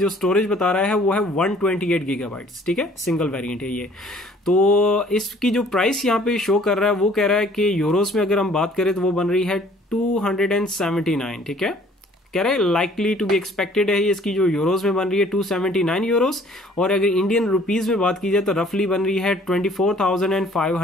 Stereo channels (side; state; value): both; normal; correlation 0.56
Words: स्टोरेज बता रहा है वो है 128 GB। ठीक है, सिंगल वेरिएंट है ये। तो इसकी जो प्राइस यहाँ पे शो कर रहा है वो कह रहा है कि यूरोस में अगर हम बात करें तो वो बन रही है 279। ठीक है, कह रहा है लाइकली टू बी एक्सपेक्टेड है, इसकी जो यूरोस में बन रही है 279 यूरोस, और अगर इंडियन रुपीज में बात की जाए तो रफली बन रही है